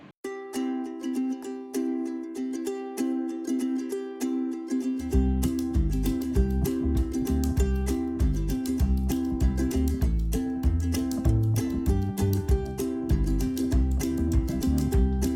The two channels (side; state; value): both; identical; correlation 1.00